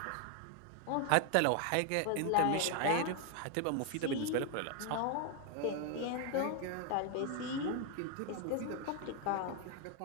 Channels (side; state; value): both; different; correlation 0.01